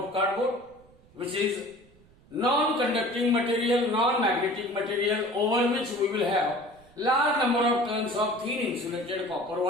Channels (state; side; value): noise; right; rumble, 27 dB below the sound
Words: cardboard, which is non-conducting material, non-magnetic material, over which we will have large number of turns of thin insulated copper